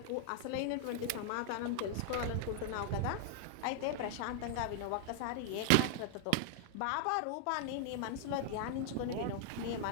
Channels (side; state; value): both; different; correlation 0.00